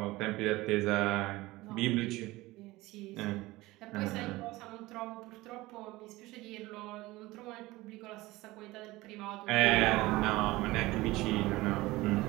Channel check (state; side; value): quieter; left; 19.6 dB